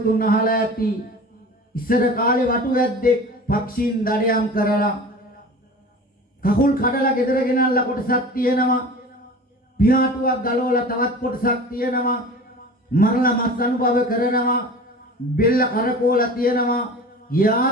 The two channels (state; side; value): normal; both; correlation 0.37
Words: අහලා ඇති ඉස්සර කාලේ වටු වැද්දෙක් පක්ෂීන් දඩයම් කරලා කකුල් කඩලා ගෙදර ගෙනල්ලා කොටසක් තියෙනවා පියාටුවක් ගලවලා තවත් කොටසක් තියෙනවා මරලා මස් අනුභව කරනවා බෙල්ල කරකෝලා තියෙනවා